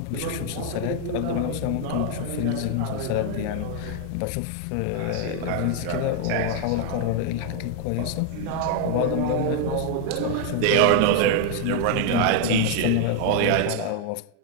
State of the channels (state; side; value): different; both; correlation 0.00